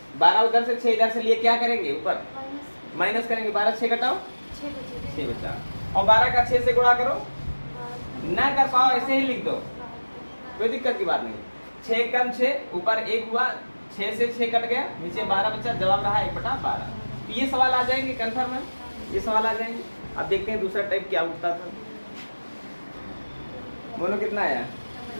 12 उधर से 6 इधर से लिए, क्या करेंगे? ऊपर माइनस करेंगे। 12 6 घटाओ 6 बचा, और 12 का 6 से गुणा करो। ना कर पाओ ऐसे ही लिख दो, कोई दिक्कत की बात नहीं। 6 कम 6 ऊपर 1 हुआ, 6 से 6 कट गया, नीचे 12 बचा, जवाब रहा 1/12। तो ये सवाल आ जाएंगे कंफर्म है, ये सवाल आ जाएंगे। अब देखते हैं दूसरा टाइप क्या उठता था। बोलो कितना आया?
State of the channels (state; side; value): inverted; both; correlation -1.00